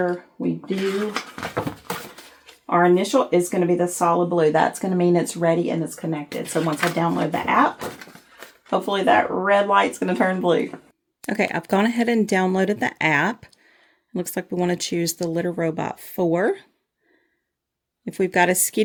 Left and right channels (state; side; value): identical; both; correlation 1.00